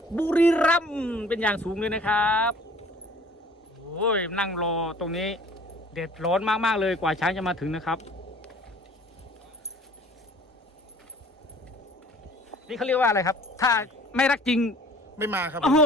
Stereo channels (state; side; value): normal; both; correlation 0.51